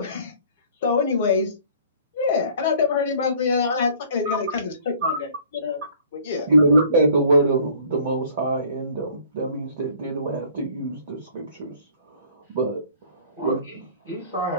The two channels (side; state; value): both; inverted; correlation -0.53